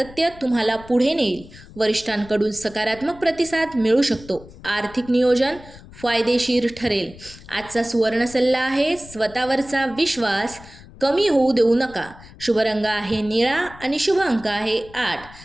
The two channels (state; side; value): noise; left; rumble, 20 dB below the sound